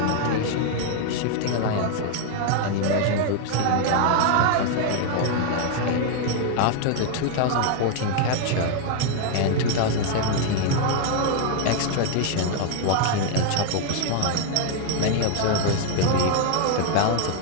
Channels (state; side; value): different; both; correlation 0.00